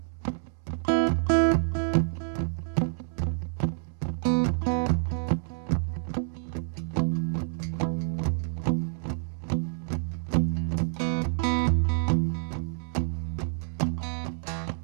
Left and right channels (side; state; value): left; silent; 59 dB below the other